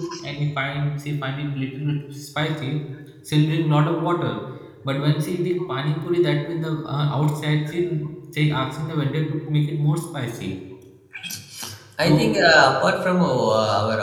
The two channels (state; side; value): identical; both; correlation 1.00